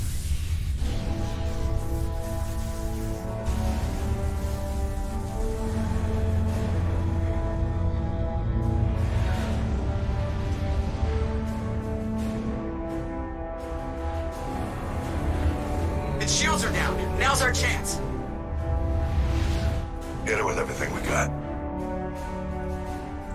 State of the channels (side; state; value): both; identical; correlation 1.00